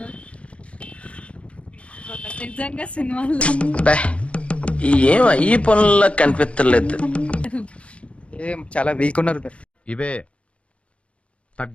నిజంగా సినిమాలో ఏం ఈ పనుల్లో కనిపించలేదు. ఏం చాలా వీక్ ఉన్నారు మీరు. ఇవే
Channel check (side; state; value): right; late; 0.061 ms